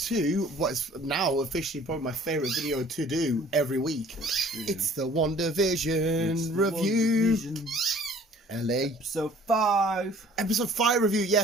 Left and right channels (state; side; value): normal; both; correlation 0.53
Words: what is now officially probably my favourite video to do every week. It's the WandaVision review. LA. Episode 5. Episode 5 review,